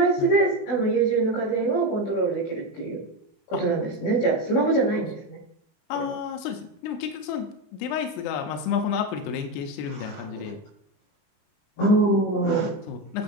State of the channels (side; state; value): right; late; 20 ms